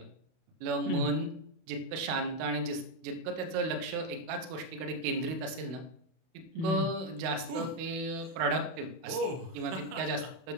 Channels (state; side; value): late; left; 32 ms